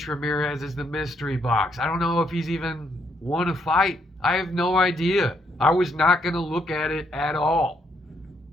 Ramirez is the mystery box. I don't know if he's even won a fight. I have no idea. I was not going to look at it at all.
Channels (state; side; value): normal; both; correlation 0.74